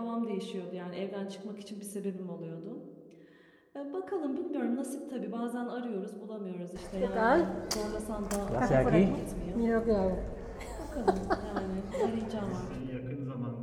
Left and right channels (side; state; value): both; identical; correlation 1.00